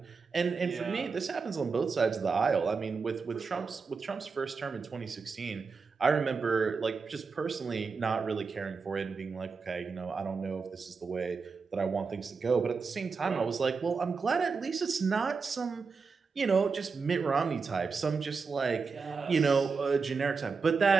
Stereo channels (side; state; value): left; quieter; 5.0 dB